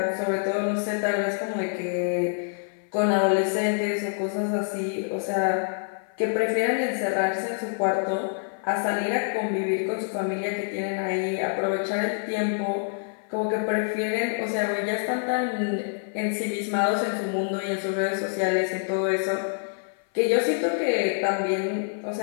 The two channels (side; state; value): right; silent; 56 dB below the other